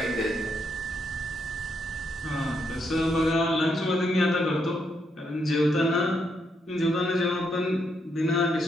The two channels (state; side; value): normal; both; correlation 0.78